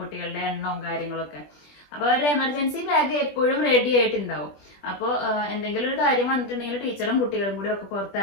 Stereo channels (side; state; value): right; late; 20 ms